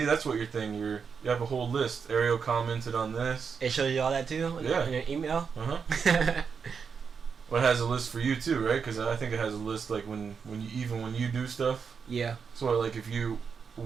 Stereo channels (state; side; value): quieter; left; 6.1 dB